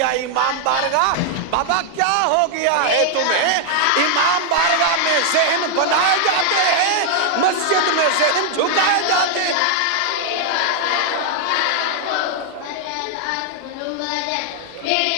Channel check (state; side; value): different; both; correlation 0.00